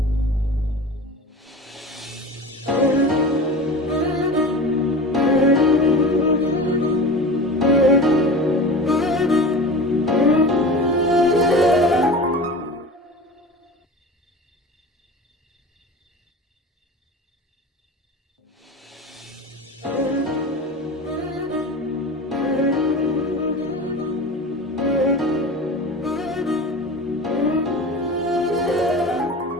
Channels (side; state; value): both; normal; correlation 0.33